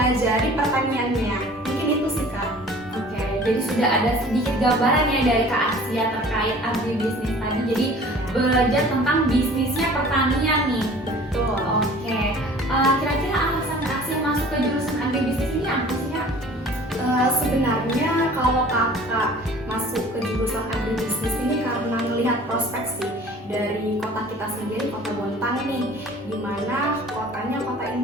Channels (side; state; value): both; normal; correlation 0.47